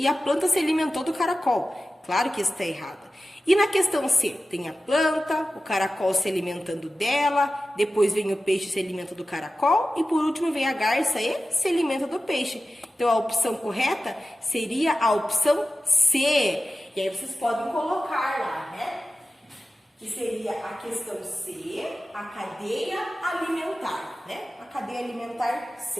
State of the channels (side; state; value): both; normal; correlation 0.94